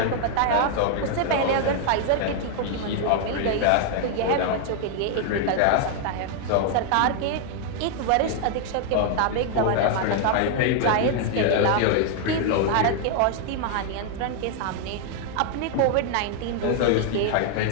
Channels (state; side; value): different; both; correlation 0.00